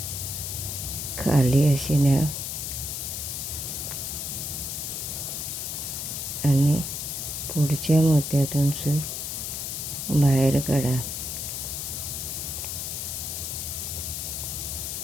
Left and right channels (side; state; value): left; noise; hiss, 4 dB below the sound